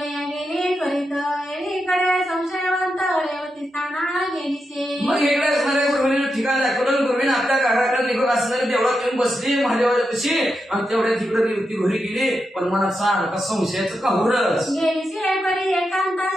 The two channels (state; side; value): normal; both; correlation 0.86